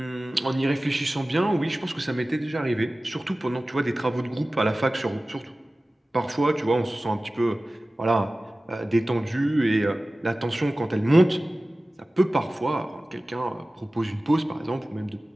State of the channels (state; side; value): normal; both; correlation 0.97